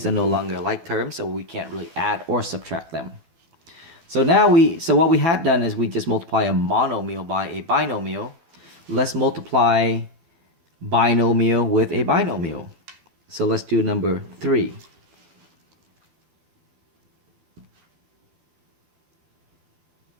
are no longer like terms, so we can't really add or subtract them. So now what we had done is we just multiply a monomial by a binomial. Let's multiply binomial with a binomial. So let's do number 3.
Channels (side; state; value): left; late; 12 ms